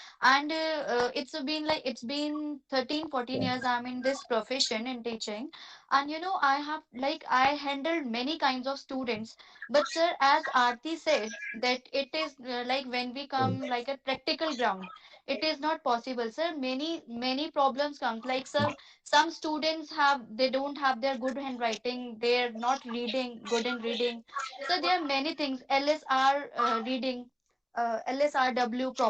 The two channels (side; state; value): both; identical; correlation 1.00